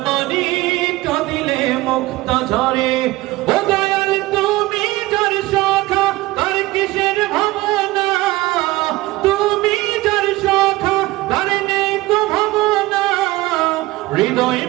মানি কাঁদিলে মুক্তা ঝরে। ও দয়াল তুমি যার শাখা তার কিসের ভাবনা, তুমি যার শাখা তার নেই তো ভাবনা। হৃদয়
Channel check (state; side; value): quieter; left; 19.1 dB